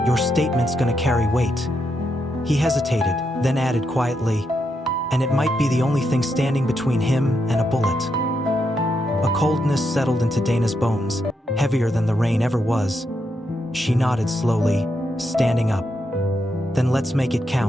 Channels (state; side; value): normal; both; correlation 0.82